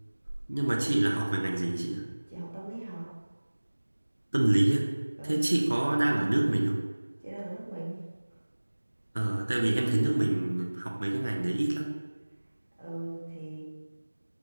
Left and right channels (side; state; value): both; inverted; correlation -1.00